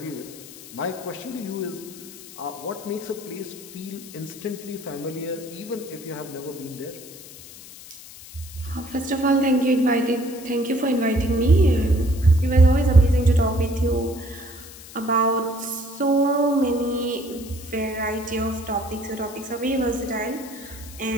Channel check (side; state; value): left; noise; hiss, 17 dB below the sound